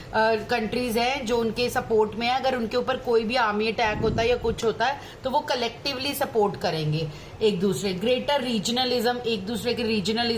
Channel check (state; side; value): identical; both; correlation 1.00